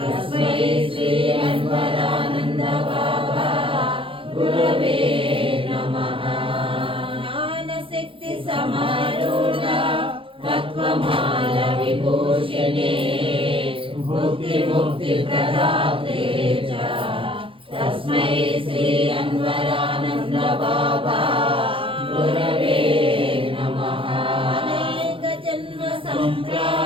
श्री अन्वरानन्द बाबा गुरवे नमः। ज्ञानशक्ति समारूढ तत्त्वमाल विभूषिणे मुक्तिप्रदाते च तस्मै श्री अन्वरानन्द बाबा गुरवे नमः। अनेक जन्म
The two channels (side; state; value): left; late; 0.25 ms